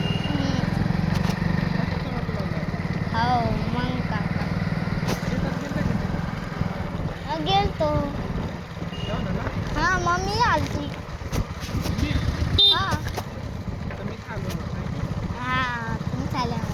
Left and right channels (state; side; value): identical; both; correlation 1.00